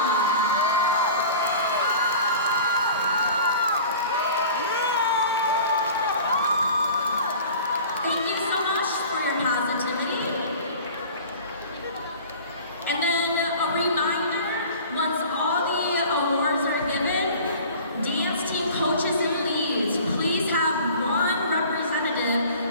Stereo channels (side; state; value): both; inverted; correlation -0.42